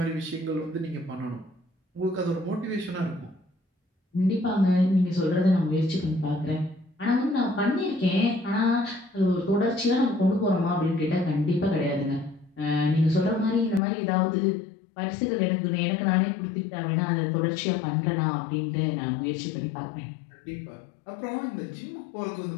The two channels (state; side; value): drops out; right; at 13.8 s